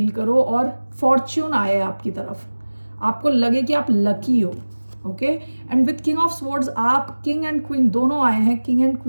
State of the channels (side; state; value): both; inverted; correlation -1.00